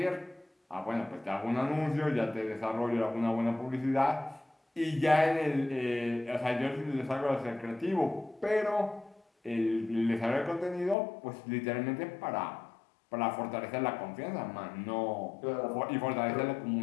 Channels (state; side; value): drops out; right; at 11.0 s